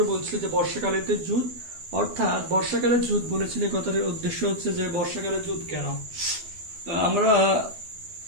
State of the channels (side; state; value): left; late; 12 ms